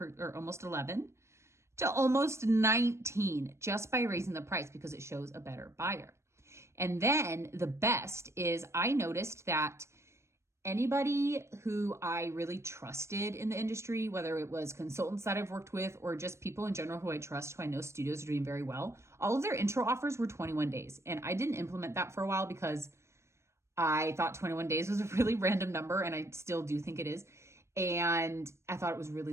or almost 11 to almost 19 just by raising the price because it shows a better buyer. And then the best is I noticed that anybody who I really trusted in the industry, whether it was consultants that I've worked with or just people in general who I trust, who I know studios are doing very well, all of their intro offers were 21 days. And I didn't implement that for a while because I thought 21 days was a really random number, and I still do think it is. And I thought it was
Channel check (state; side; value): late; left; 0.13 ms